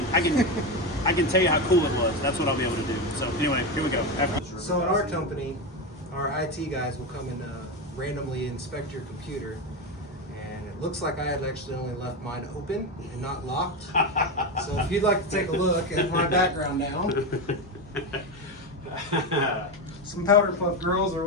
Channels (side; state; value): both; normal; correlation 0.15